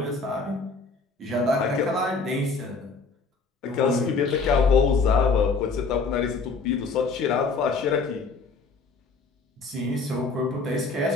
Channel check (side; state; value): right; quieter; 4.2 dB